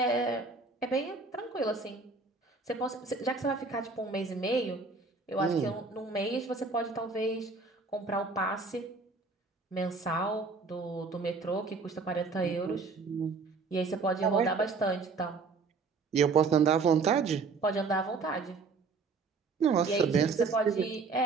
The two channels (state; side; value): quieter; left; 4.3 dB